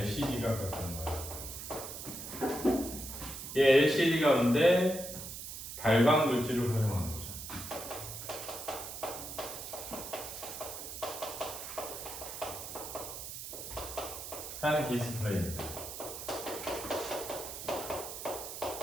가까운 거야. 이 LCD 가운데 발광 물질을 활용하는 거죠. 한 디스플레이입니다.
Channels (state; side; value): noise; right; hiss, 8 dB below the sound